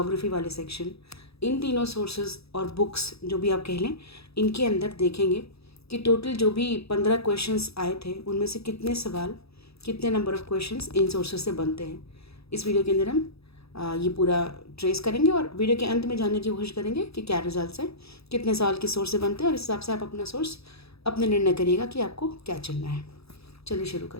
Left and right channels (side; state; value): right; late; 0.78 ms